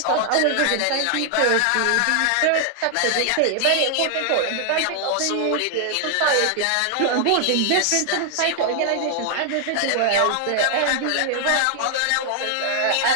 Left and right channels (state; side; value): different; both; correlation 0.00